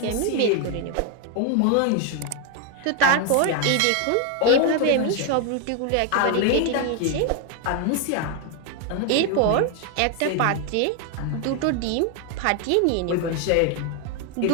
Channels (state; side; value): different; both; correlation 0.01